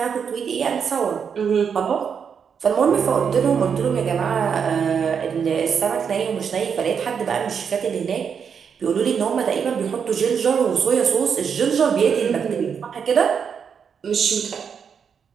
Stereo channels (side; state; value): left; quieter; 6.9 dB